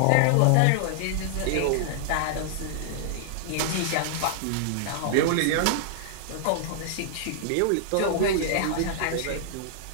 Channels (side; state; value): both; different; correlation -0.01